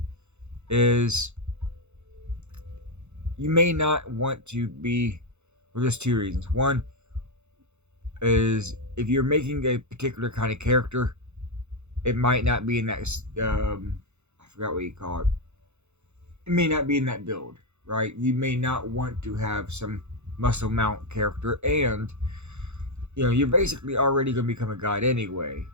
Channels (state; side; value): late; left; 0.82 ms